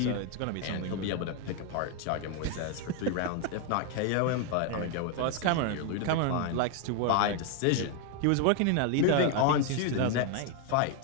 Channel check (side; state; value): both; different; correlation 0.01